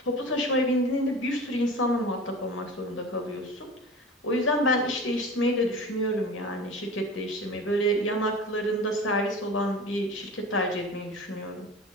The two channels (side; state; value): both; normal; correlation 0.35